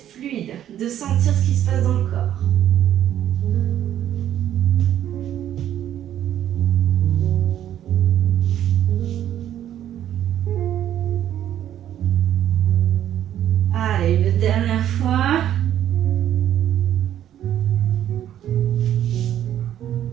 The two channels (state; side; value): quieter; left; 11.1 dB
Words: fluide, de sentir ce qui se passe dans le corps. Allez, une dernière fois.